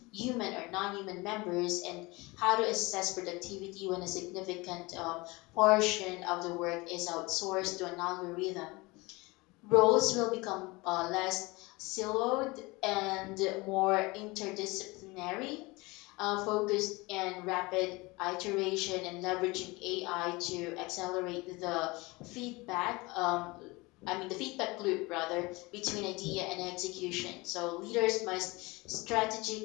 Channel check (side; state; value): right; quieter; 23.8 dB